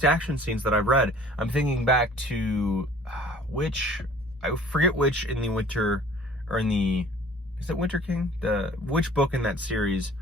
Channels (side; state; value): both; normal; correlation 0.51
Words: action scenes that I've read. I'm thinking back to I forget which in the Winter, or in the, is it Winter King? Which book in that series